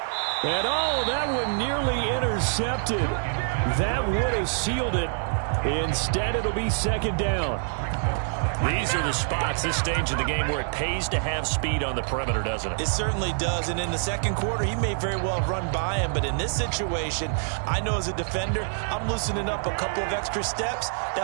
And oh, that one nearly intercepted. That would have sealed it. Instead, it'll be 2nd down. These are the spots, this stage of the game, where it pays to have speed on the perimeter, doesn't it? It certainly does, and in the 2nd quarter, he may very well run by him, but in this situation, I know as a defender, I'm loosening up a couple of extra steps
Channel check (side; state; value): left; silent; 61 dB below the other